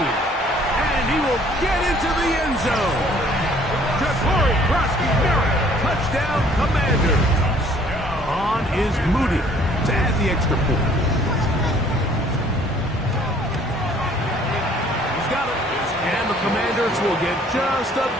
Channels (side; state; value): both; normal; correlation 0.58